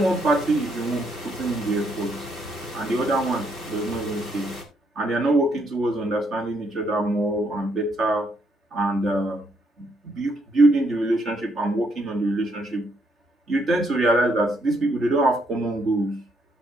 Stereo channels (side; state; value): both; normal; correlation 0.73